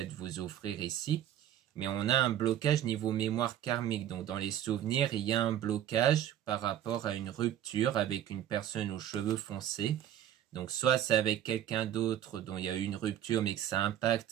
vous offrir ici. Mais on a un blocage niveau mémoire karmique, donc dans les souvenirs, il y a un blocage par rapport à une rupture avec une personne aux cheveux foncés. Donc soit c'est avec quelqu'un d'autre dont il y a eu une rupture mais que ça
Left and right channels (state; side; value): quieter; left; 10.9 dB